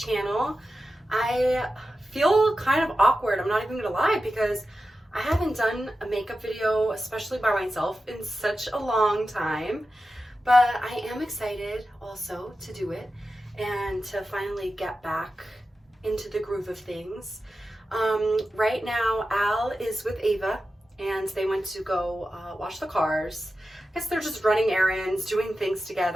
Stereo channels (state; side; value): normal; both; correlation 0.92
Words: I feel kind of awkward, I'm not even gonna lie, because I haven't done a makeup video, especially by myself, in such a long time. But I am excited also to do it and to finally get back into the groove of things. Right now, Al is with Ava and they went to go wash the cars. I guess they're just running errands, doing things